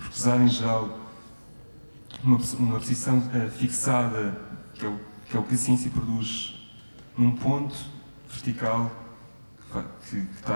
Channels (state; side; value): inverted; both; correlation -1.00